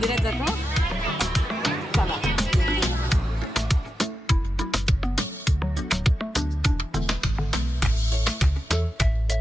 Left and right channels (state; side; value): normal; both; correlation 0.90